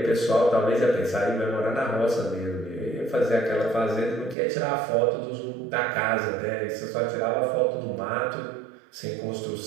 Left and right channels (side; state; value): left; drops out; at 4.4 s